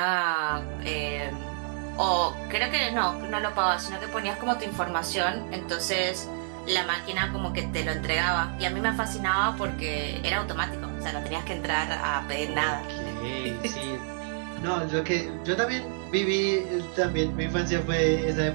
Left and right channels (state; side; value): silent; left; 59 dB below the other